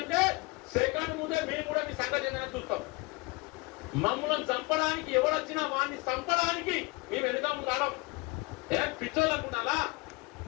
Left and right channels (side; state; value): right; quieter; 25.1 dB